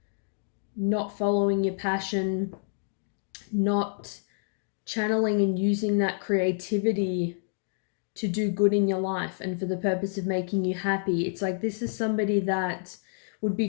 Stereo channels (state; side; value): silent; right; digital silence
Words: not following your passion, not channeling and using that creativity to do good in your life and for the purpose of making you happy. It's like this is somebody that would